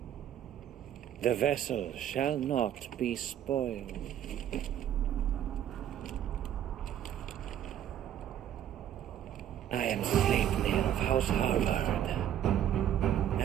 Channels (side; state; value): left; quieter; 10.7 dB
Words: The vessel shall not be spoiled. I am Sleipnir of House Harvard,